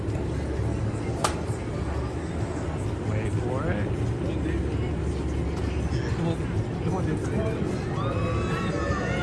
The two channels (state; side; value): identical; both; correlation 1.00